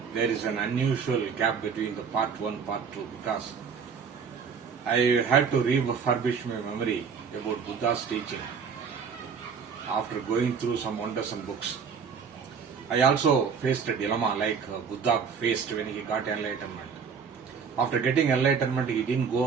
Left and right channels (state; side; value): quieter; left; 6.2 dB